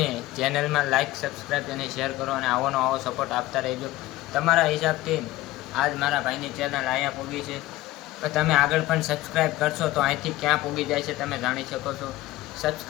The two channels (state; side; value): quieter; right; 17.3 dB